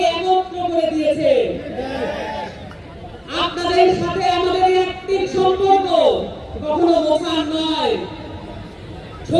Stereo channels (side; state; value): both; identical; correlation 1.00